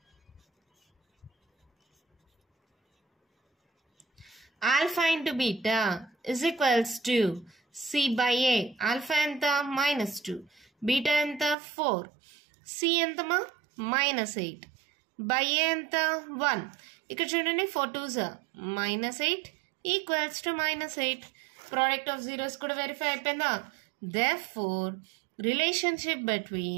Alpha into beta is equals to C by A. Alpha ఎంత? -2, బీటా ఎంత? 4, సి ఎంతమా? -8, బై ఏ ఎంత? 1. ఇక్కడ చూడండి 4 2s -8 equals to -8. Product of zeros కూడా వెరిఫై అయిపోయిందా? Therefore, relationship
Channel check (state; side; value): drops out; left; at 11.6 s